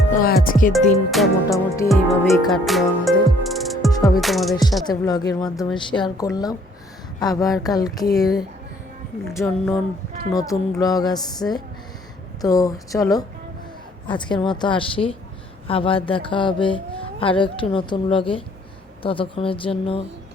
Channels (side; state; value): both; normal; correlation 0.61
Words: তো আজকের দিনটা মোটামুটি এইভাবেই কাটলো আমাদের। সবই তোমাদের সাথে ব্লগের মাধ্যমে শেয়ার করলাম। আবার কালকের জন্য নতুন ব্লগ আসছে। তো চলো আজকের মতো আসি, আবার দেখা হবে আরও একটি নতুন ব্লগে। ততক্ষণের জন্য